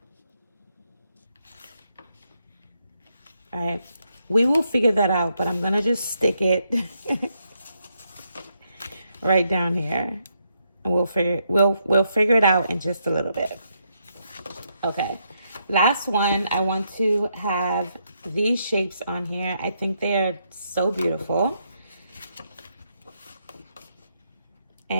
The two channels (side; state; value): both; inverted; correlation -0.79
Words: All right, we will figure that out, but I'm gonna just stick it right down here, and we'll figure it out in just a little bit. Okay, last one. I want to have these shapes on here. I think they are so beautiful.